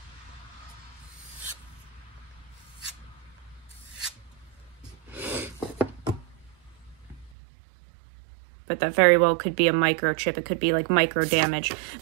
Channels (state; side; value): drops out; left; at 7.3 s